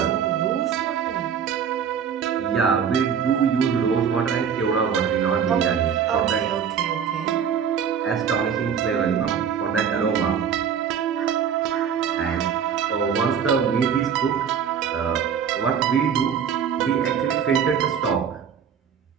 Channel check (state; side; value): quieter; left; 7.6 dB